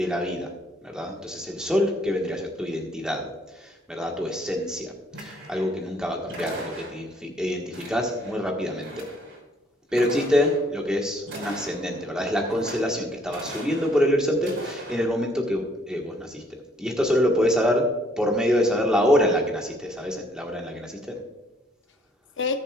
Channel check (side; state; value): both; normal; correlation 0.64